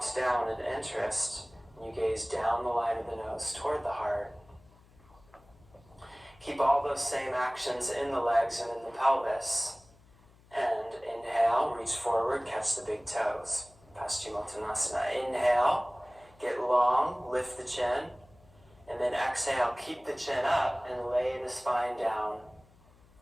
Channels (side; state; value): left; noise; hum, 27 dB below the sound